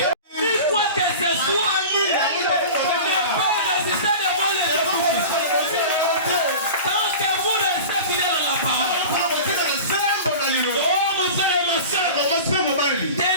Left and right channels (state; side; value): inverted; both; correlation -0.34